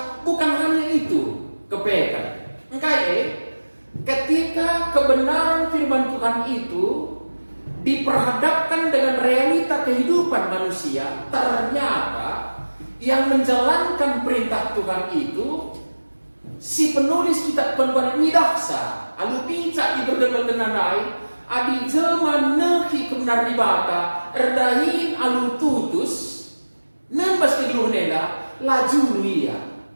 bukan hanya itu. Kepekan. Ketika kebenaran firman Tuhan itu diperhadapkan dengan realita kehidupan manusia, ternyata yang menjalankan perintah Tuhan itu si penulis kitab penuhan midaksa, alu pincak iberdemetenanai, adi jelma nehi kebenar di bata, erdahin alu tutus, nembas kegeluhneda, laju ia.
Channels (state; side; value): inverted; both; correlation -1.00